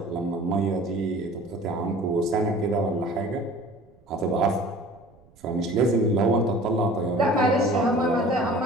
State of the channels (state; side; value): noise; right; rumble, 29 dB below the sound